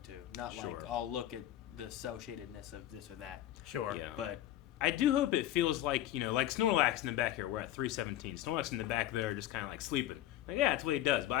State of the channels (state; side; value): quieter; right; 13.3 dB